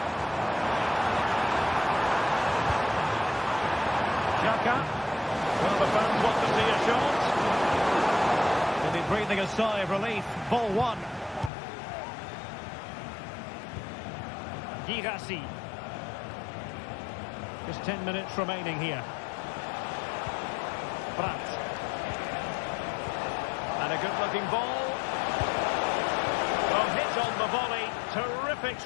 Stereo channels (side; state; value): right; drops out; at 11.5 s